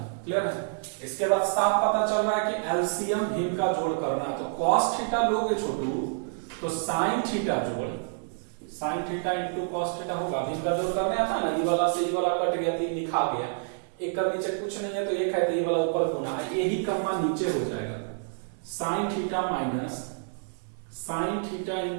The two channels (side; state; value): left; silent; digital silence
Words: क्लियर है? इसके बाद साफ पता चल रहा है कि एलसीएम भिन्न का जोड़ करना है, तो कॉस थीटा लोगे छोटू तो साइन थीटा जोड़ sign theta into cos theta होगा, भिन्न का जोड़ करने आता ना, ई वाला से ई वाला कट गया, 3 लिखा गया, एक का नीचे कुछ नहीं है तो एक है तो ई वाला ऊपर गुना है, यही कर्मा नीचे हो जाएगा, sign theta minus sine theta